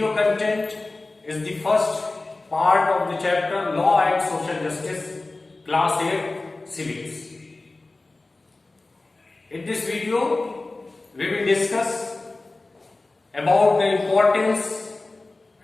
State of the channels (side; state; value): right; quieter; 3.2 dB